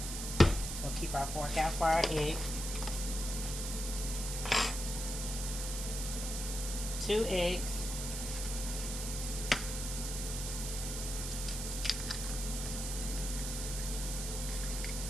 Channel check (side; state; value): right; noise; hiss, 5 dB below the sound